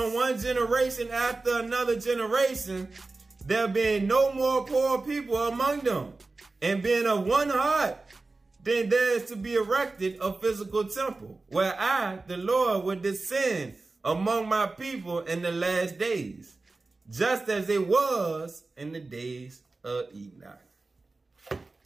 one generation after another generation, there being no more poor people among them, and being of one heart, then there is to be erected a physical temple, where I, the Lord, will descend among my people in the last days, just as it was in the days of Enoch.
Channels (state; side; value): quieter; left; 3.5 dB